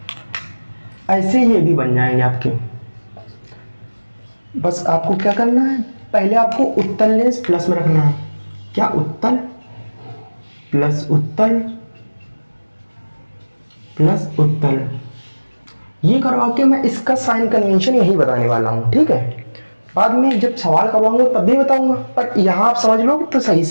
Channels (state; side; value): inverted; both; correlation -1.00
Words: ऐसे ये भी बन जाएंगे आपके। बस आपको क्या करना है, पहले आपको उत्तल लेंस प्लस में रखना है, क्या उत्तल प्लस उत्तल प्लस उत्तल, ये करवा के मैं इसका साइन कन्वेंशन यही बताने वाला हूँ, ठीक है। बाद में जब सवाल करवाऊंगा तब भी बताऊंगा, पर यहाँ आप समझ लोगे तो सही